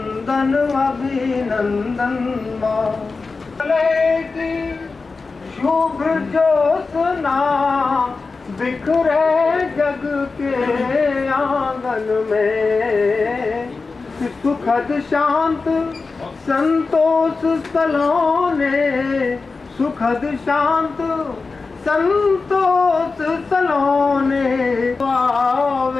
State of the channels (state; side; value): quieter; right; 4.1 dB